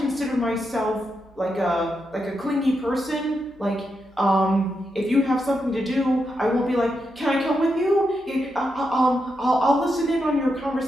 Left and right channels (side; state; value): both; normal; correlation 0.84